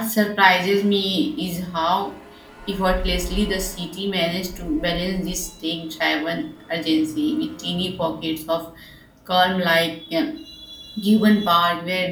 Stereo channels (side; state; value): both; identical; correlation 1.00